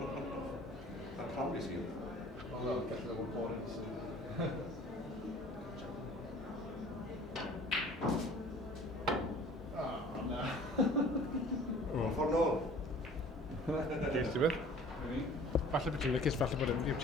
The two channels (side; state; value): both; normal; correlation 0.49